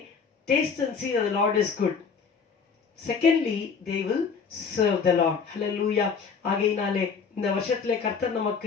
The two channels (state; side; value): quieter; right; 5.8 dB